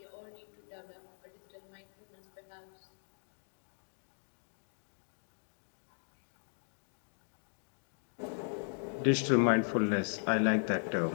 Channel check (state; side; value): silent; right; digital silence